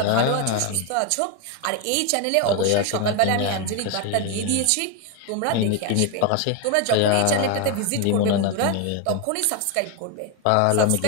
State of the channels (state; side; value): different; both; correlation 0.01